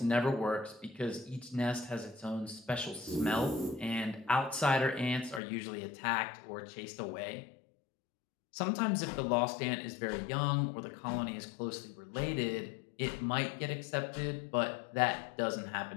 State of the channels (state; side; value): drops out; right; at 5.4 s